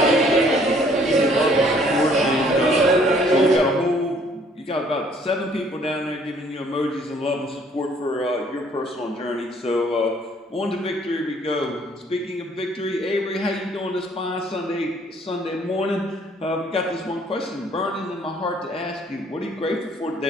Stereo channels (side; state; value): both; normal; correlation 0.61